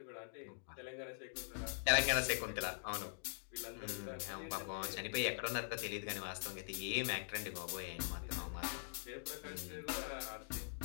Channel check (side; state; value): right; silent; digital silence